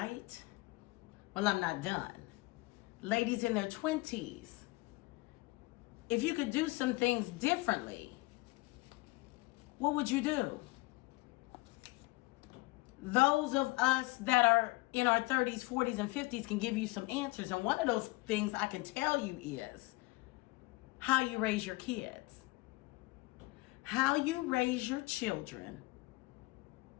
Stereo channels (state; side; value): quieter; right; 23.2 dB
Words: Well, I'm not done. Ladies in their 20s, if you could do some things differently, what would you do? Those of us that are in our 30s, 40s, and 50s can give you some answers. And one of those things I can tell you is how you raise your kids. How you raise your children